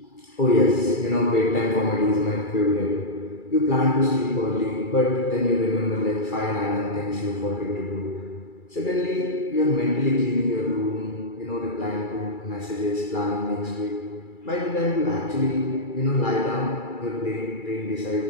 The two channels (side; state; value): right; late; 2.3 ms